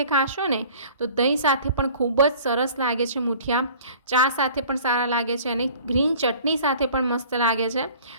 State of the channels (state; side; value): inverted; both; correlation -0.48